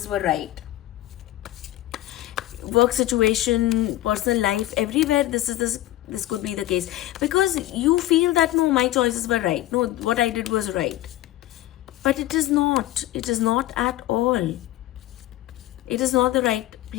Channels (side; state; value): right; quieter; 15.2 dB